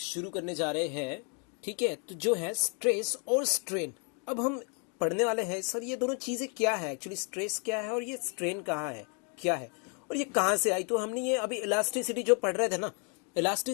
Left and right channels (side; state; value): right; quieter; 37.8 dB